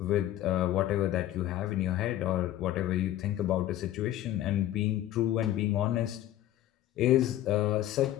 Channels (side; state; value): right; quieter; 13.4 dB